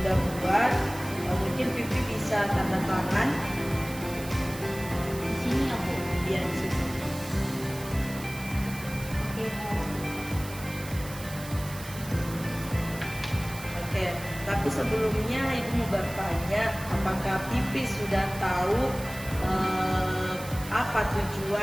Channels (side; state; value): right; noise; hiss, 14 dB below the sound